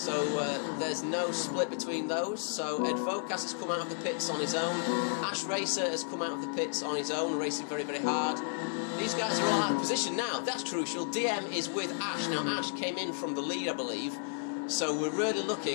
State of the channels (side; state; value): right; silent; digital silence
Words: there's no split between those. So Advocaat has come out of the pits on his own. Ash Racer has come out of the pits on his own, racing very, very hard. These guys are all out of position now. That's crucial. DM is with Ash. Now Ash came in from the lead, I believe. So we're really